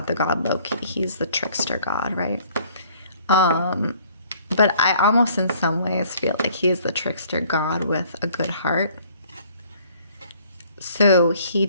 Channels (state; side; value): inverted; both; correlation -0.58